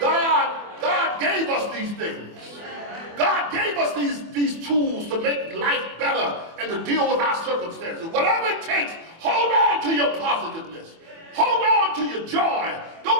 gave us these things. God gave us these tools to make life better and to deal with our circumstances. Whatever it takes, hold on to your positiveness. Hold on to your joy.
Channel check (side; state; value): left; late; 24 ms